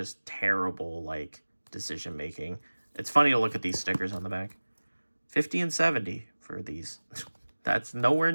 terrible like decision making. It's funny to look at these stickers on the back. 50 and 70 for these. That's nowhere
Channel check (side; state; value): both; inverted; correlation -1.00